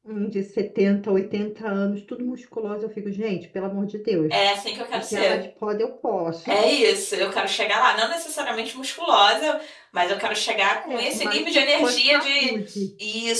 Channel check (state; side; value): identical; both; correlation 1.00